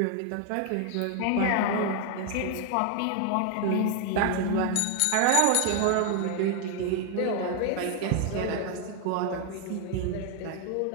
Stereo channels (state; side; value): different; both; correlation 0.00